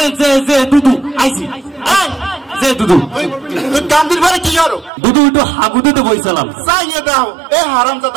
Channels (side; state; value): left; drops out; at 4.9 s